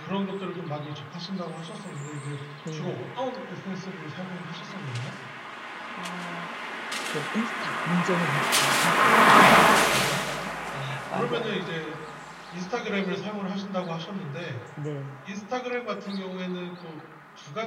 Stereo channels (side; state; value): both; identical; correlation 1.00